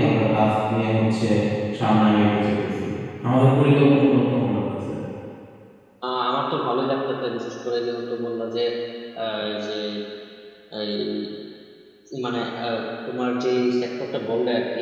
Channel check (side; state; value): both; identical; correlation 1.00